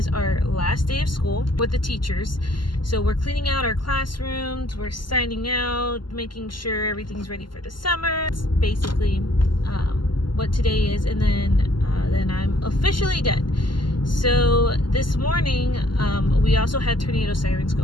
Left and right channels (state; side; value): late; right; 0.71 ms